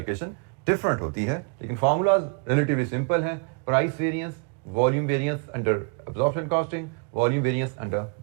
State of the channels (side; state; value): left; quieter; 35.0 dB